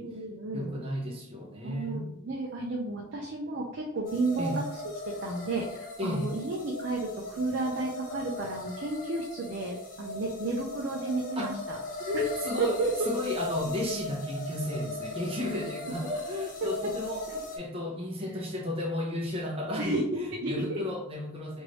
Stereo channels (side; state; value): both; normal; correlation 0.30